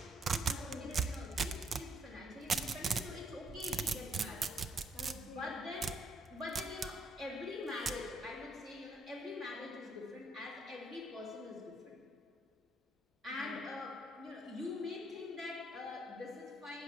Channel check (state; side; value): normal; both; correlation 0.71